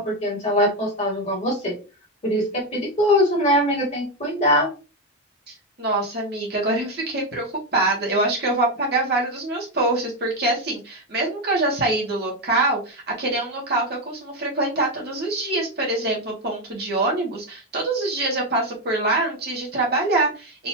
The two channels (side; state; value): both; normal; correlation 0.09